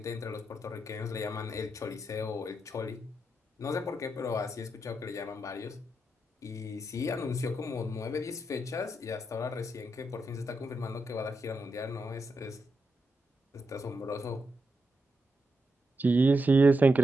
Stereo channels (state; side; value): normal; both; correlation 0.85